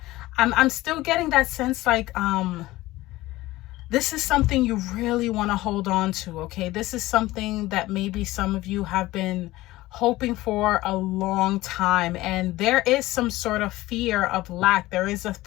I'm still getting that sense like this is something you really want to hold on to, okay? This is something that maybe some of you have been hoping for a long time, and there is some sort of fear of lack. There is a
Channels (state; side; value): quieter; right; 17.9 dB